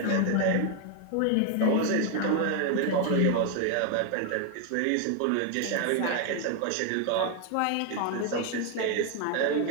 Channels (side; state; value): both; different; correlation 0.01